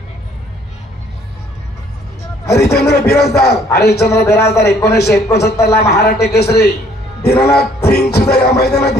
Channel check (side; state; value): both; normal; correlation 0.61